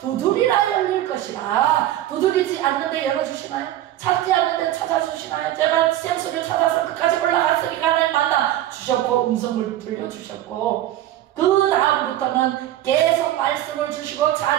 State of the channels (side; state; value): left; quieter; 13.3 dB